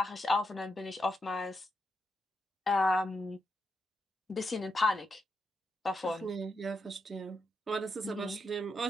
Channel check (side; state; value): both; normal; correlation 0.83